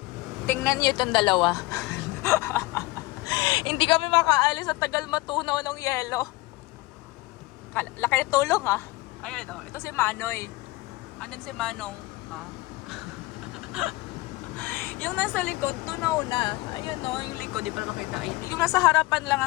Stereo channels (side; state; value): right; quieter; 21.0 dB